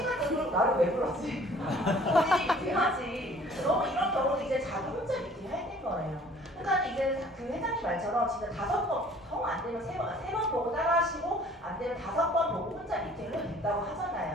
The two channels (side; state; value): both; normal; correlation 0.53